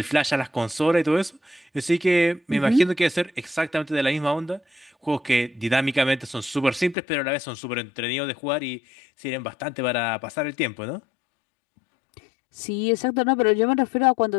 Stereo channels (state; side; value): drops out; right; at 7.0 s